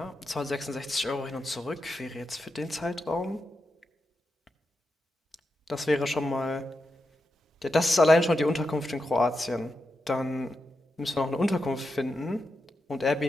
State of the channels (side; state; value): both; normal; correlation 0.87